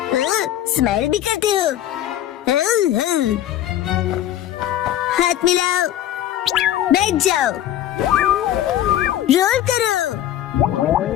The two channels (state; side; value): quieter; right; 12.2 dB